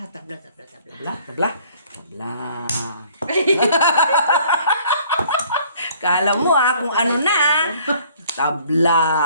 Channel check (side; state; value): both; inverted; correlation -0.57